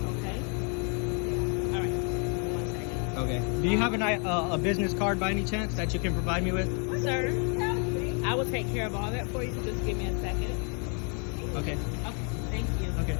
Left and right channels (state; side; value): quieter; right; 38.9 dB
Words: Okay? All right. 1 second. Okay. Do you have a business card by any chance that you can provide me with? Sir, I will take care of all that for you. So just give me a second. Okay. Okay. Thank you. Okay.